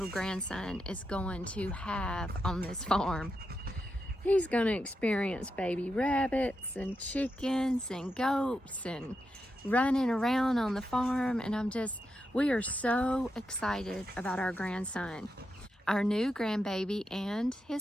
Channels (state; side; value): normal; both; correlation 0.86